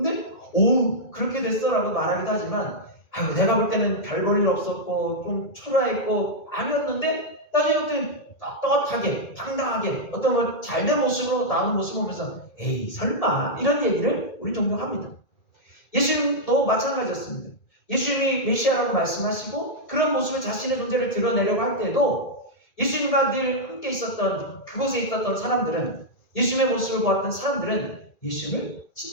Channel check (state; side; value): late; right; 2.1 ms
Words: 그렇게 됐어? 라고 말하기도 하지만 아이고 내가 볼 때는 별 볼 일 없었고 좀 초라했고 아니었는데 나중에 어떤 떳떳하게 당당하게 어떤 잘된 모습으로 나오는 모습을 보면서 에이 설마 이런 얘기를 우리 종종 합니다. 예수님도 마찬가지였습니다. 예수님이 메시아라고 말씀하시고 그런 모습을 자신의 존재를 드러내려고 할 때도 예수님과 늘 함께 있었던 그곳에 있었던 사람들은 예수님의 모습을 보았던 사람들은 예수님을